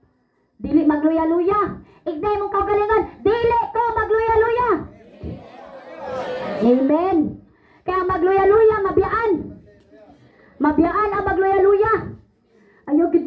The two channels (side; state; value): both; identical; correlation 1.00